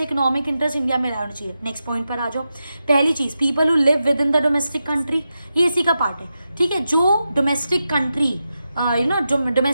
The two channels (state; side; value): inverted; both; correlation -0.89